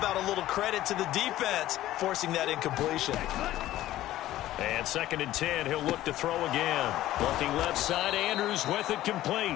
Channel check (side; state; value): right; quieter; 14.5 dB